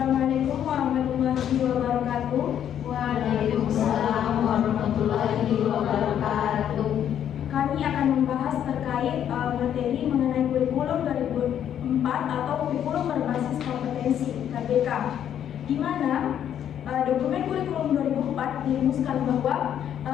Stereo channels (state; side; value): quieter; right; 9.8 dB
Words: warahmatullahi wabarakatuh. Waalaikumsalam warahmatullahi wabarakatuh. Kami akan membahas terkait materi mengenai kurikulum 2004 atau kurikulum berbasis kompetensi KBK, di mana dokumen kurikulum 2004 dirumuskan bahwa